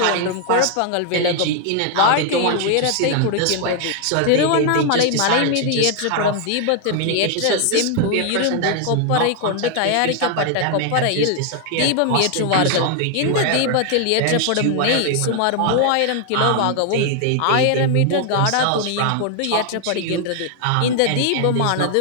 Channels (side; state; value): both; different; correlation 0.00